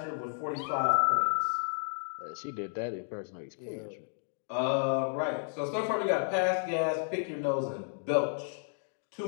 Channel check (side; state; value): right; silent; digital silence